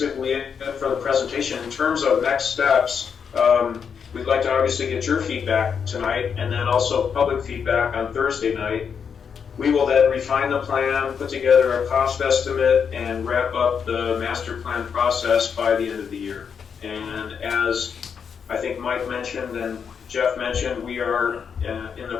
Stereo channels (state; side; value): quieter; right; 6.8 dB